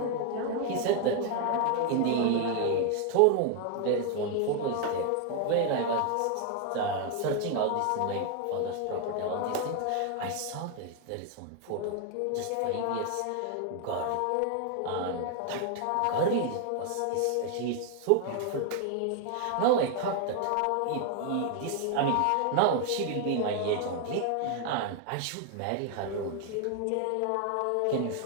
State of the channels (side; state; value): both; different; correlation 0.00